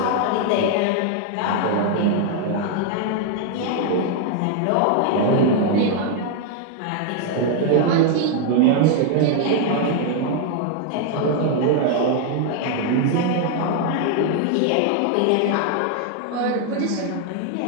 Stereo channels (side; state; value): both; different; correlation 0.00